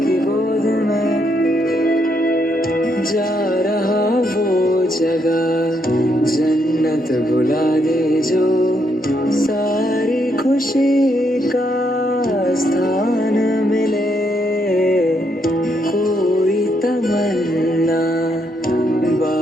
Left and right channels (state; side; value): normal; both; correlation 0.76